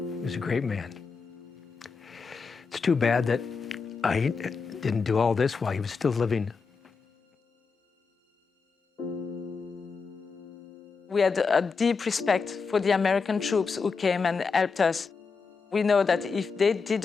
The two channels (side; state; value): right; quieter; 5.0 dB